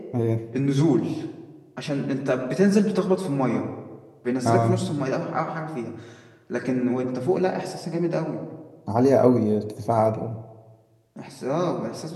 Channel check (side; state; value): both; identical; correlation 1.00